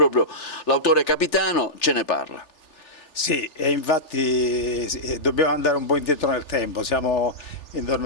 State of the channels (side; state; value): right; late; 3.4 ms